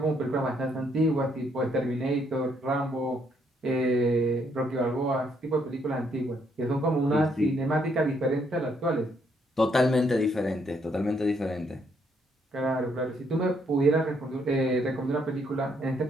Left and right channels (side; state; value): both; normal; correlation 0.72